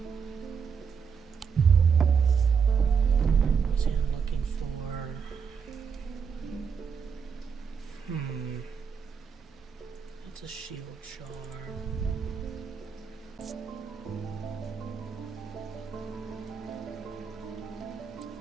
Let's see, I'm looking for... That's a shield charm.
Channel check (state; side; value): quieter; left; 6.4 dB